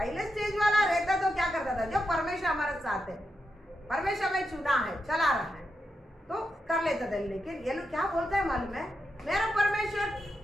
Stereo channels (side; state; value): both; normal; correlation 0.86